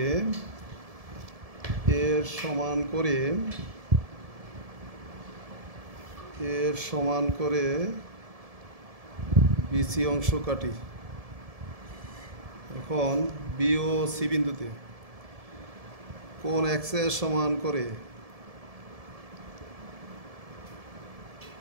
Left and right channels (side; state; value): left; late; 1.7 ms